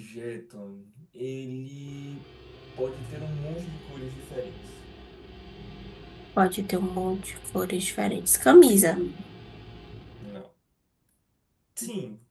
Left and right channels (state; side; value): identical; both; correlation 1.00